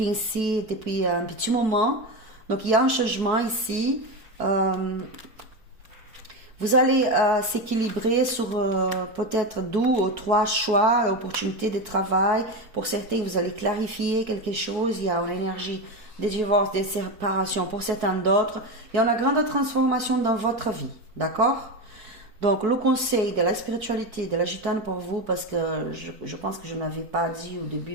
depuis un petit moment. Donc, il y a un changement ici. Vous allez s'équilibrer sur peut-être 2 ou 3 choix, opportunités de travail. Pour certains, vous allez clarifier quelque chose. Il y a une énergie de divorce, de séparation. Pour certains d'autres, il y a une grande transformation dans votre vie. D'accord? Donc, le conseil de la spiritualité, de la gitane pour vous, parce que je pense que je n'avais pas dit au début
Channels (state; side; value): late; left; 4.6 ms